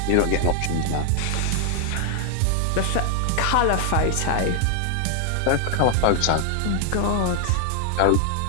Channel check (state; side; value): different; both; correlation 0.00